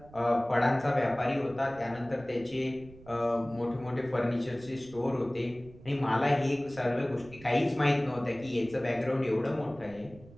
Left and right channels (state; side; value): noise; right; rumble, 21 dB below the sound